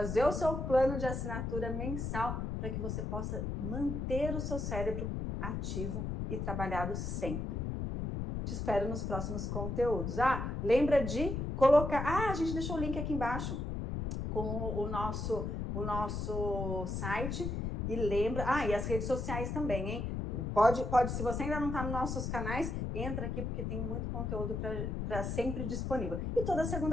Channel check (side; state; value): left; noise; rumble, 3 dB below the sound